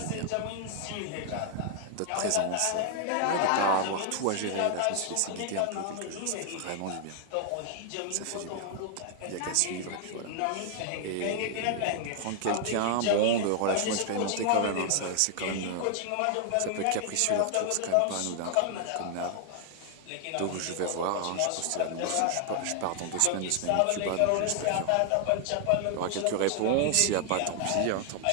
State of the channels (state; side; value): different; both; correlation 0.00